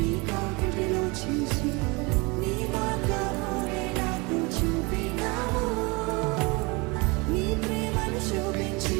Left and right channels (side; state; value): left; quieter; 27.3 dB